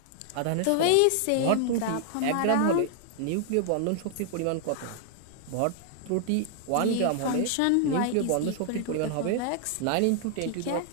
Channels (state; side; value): different; both; correlation 0.00